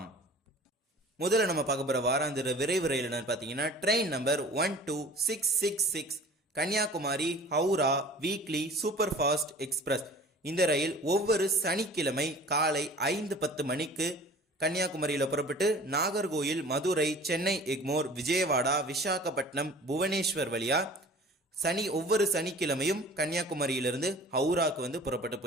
முதல்ல நம்ம பார்க்க போகிற வாராந்திர விரைவு ரயில் என்னன்னு பார்த்தீங்கன்னா train number 12666 Kanyakumari Howrah weekly super fast express. இந்த ரயில் ஒவ்வொரு சனிக்கிழமை காலை 5:10 மணிக்கு கன்னியாகுமரியில் புறப்பட்டு நாகர்கோயில், மதுரை, சென்னை எக்மோர், விஜயவாடா, விசாகப்பட்டினம், புவனேஸ்வர் வழியா ஒவ்வொரு சனிக்கிழமையும் கன்னியாகுமரியிலிருந்து ஹவுராக்கு வந்து புறப்பட்டு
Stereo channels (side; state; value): both; normal; correlation 0.45